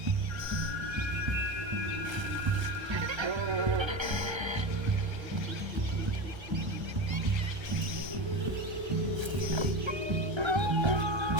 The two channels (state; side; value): late; left; 1.3 ms